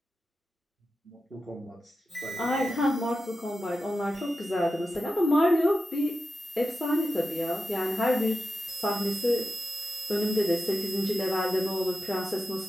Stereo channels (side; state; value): both; normal; correlation 0.91